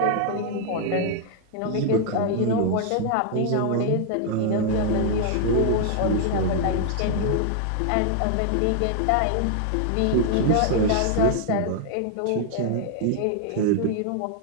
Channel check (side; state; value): both; different; correlation 0.00